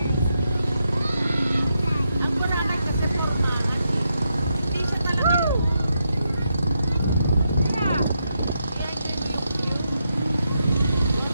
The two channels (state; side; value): inverted; both; correlation -0.83